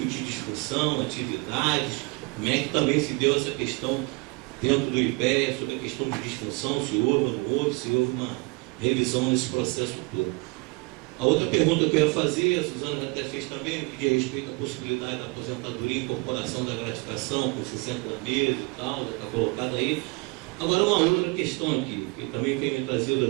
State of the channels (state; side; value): quieter; left; 28.0 dB